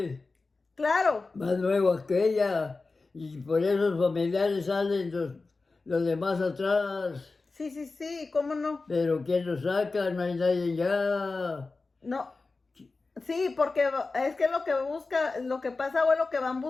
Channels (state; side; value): quieter; right; 3.8 dB